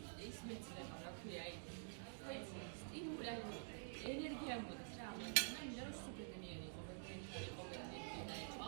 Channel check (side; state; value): left; silent; digital silence